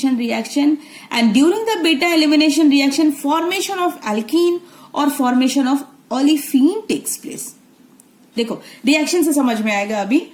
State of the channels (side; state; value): both; identical; correlation 1.00